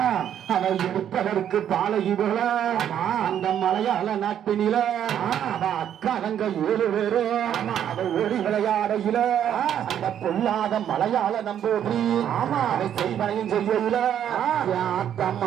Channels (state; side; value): quieter; left; 9.8 dB